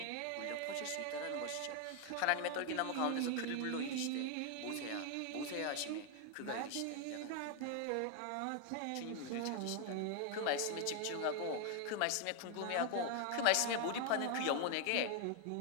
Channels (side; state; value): both; different; correlation 0.00